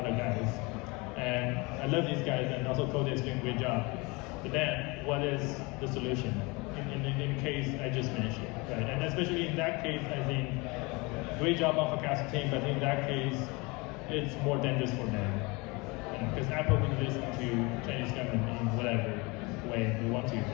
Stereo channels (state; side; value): quieter; right; 26.3 dB